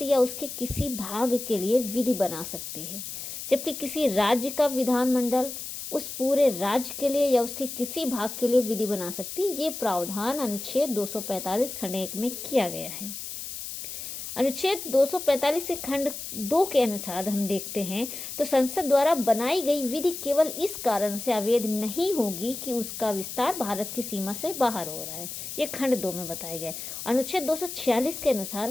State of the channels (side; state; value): left; noise; hiss, 8 dB below the sound